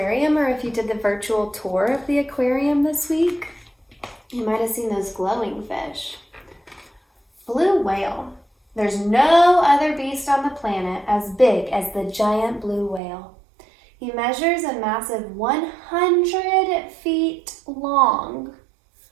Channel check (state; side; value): drops out; left; at 13.0 s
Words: or if you did the virtual tour of the aquarium this week, you might have seen those glowing fish. Blue whale. There's no other beast on the planet as big as the giant blue whale. He measures a massive 100 feet long